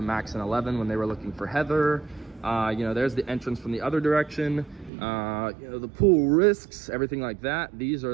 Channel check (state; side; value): drops out; left; at 4.9 s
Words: Max and 11 when they were looking for Heather. You know, there's the entrance from the other direction. You know, the pool risks, everything like that. These are